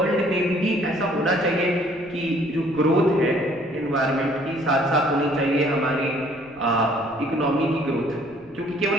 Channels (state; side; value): noise; left; rumble, 27 dB below the sound